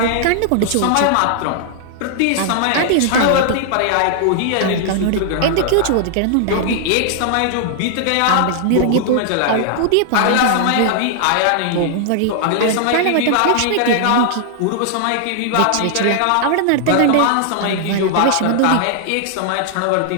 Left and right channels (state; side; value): different; both; correlation 0.00